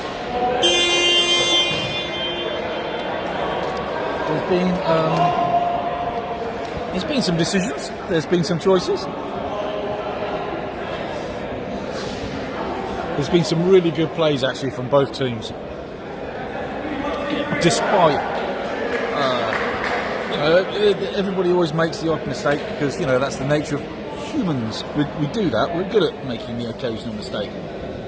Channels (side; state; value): both; identical; correlation 1.00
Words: There's been some decisions. There's been some choices. There's been some really good plays actually from both teams. Despite, everybody always makes the odd mistake because that's the nature of humans. We do that. We're good at making the occasional mistake,